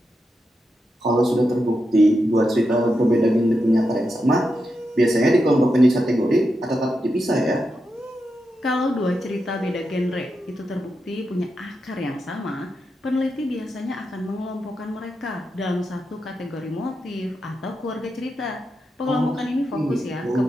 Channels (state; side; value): normal; both; correlation 0.87